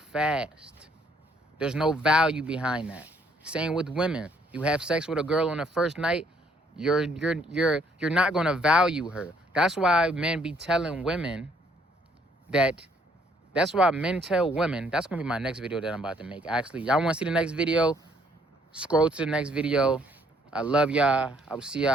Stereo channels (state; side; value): normal; both; correlation 0.66